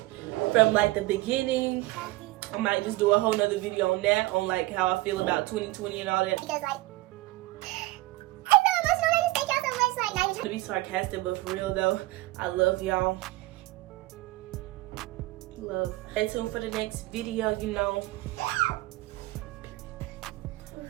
from, like, the beginning. I might just do a whole nother video on that, on like how I feel about 2020 and all that. Because like, I'm so emotional. I just thank y'all so much. Like, not even to be sarcastic, but for real though, I love y'all. Love. Stay tuned for the next video, you know.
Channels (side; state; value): left; quieter; 19.4 dB